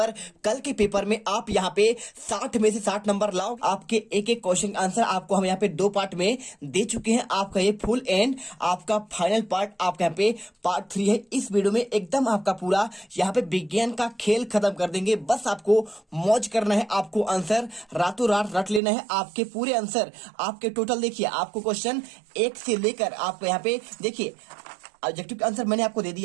कल के पेपर में आप यहाँ पे 60 में से 60 नंबर लाओ। आपके एक एक क्वेश्चन आंसर आपको हम यहाँ पे 2 पार्ट में दे चुके हैं। आपका ये फुल एंड आपका फाइनल पार्ट आपका यहाँ पे पार्ट 3 है। इस वीडियो में एकदम आपका पूरा यहाँ पे विज्ञान का खेल खत्म कर देंगे। बस आपको मौज करना है, आपको आंसर रातों रात रट लेना है। आपके पूरे आंसर आपके टोटल देखिए, आपको क्वेश्चन 1 से लेकर आपको यहाँ पे देखिए ऑब्जेक्टिव का आंसर मैंने आपको दे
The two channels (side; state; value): left; drops out; at 18.8 s